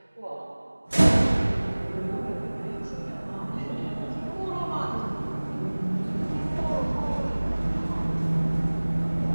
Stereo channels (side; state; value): both; inverted; correlation -1.00